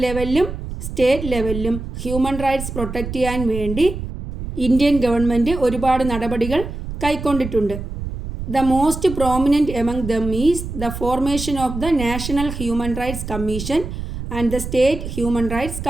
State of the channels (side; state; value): right; noise; rumble, 7 dB below the sound